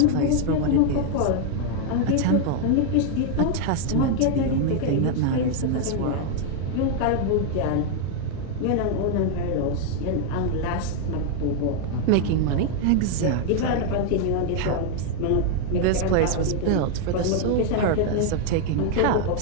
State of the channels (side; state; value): both; different; correlation 0.00